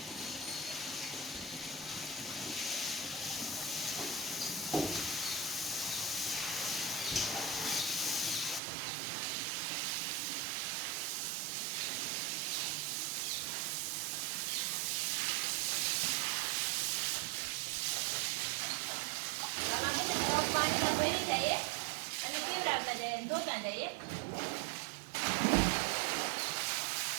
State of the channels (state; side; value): drops out; left; at 8.6 s